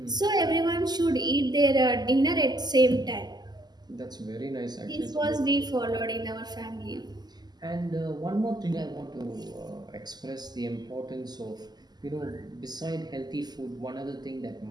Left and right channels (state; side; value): late; left; 0.20 ms